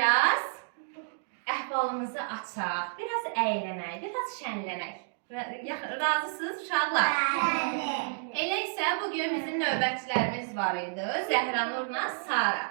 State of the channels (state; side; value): silent; left; digital silence